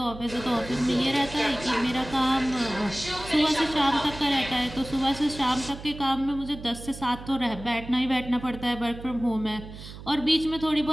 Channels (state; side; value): noise; right; hum, 14 dB below the sound